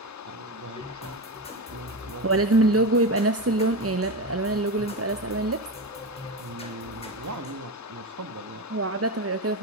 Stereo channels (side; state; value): both; normal; correlation 0.18